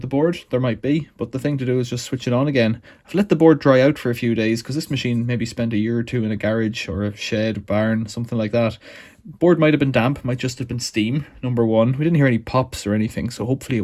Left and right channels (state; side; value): identical; both; correlation 1.00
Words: the board. There might be, but the thing to do is just switch it on again. I've let the board dry out for a few days because this machine maybe spent a year or two in a garage or a shed, barn, something like that. Board might have been damp, might just have been steam, number one. We didn't hear any pops or anything, so hopefully